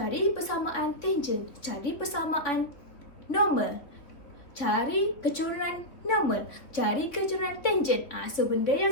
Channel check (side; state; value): right; late; 3.8 ms